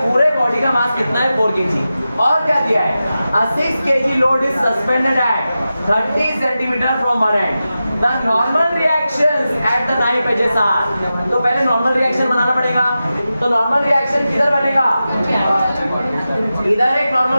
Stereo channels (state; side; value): inverted; both; correlation -0.92